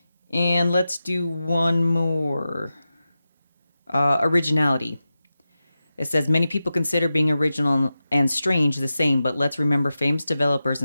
And let's do one more. Originality. It says many people consider being original and strange the same, but let's remember famous developers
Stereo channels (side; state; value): both; inverted; correlation -0.92